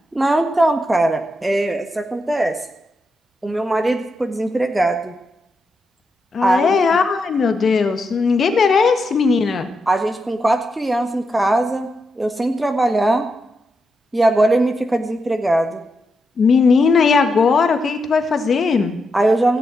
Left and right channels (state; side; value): normal; both; correlation 0.84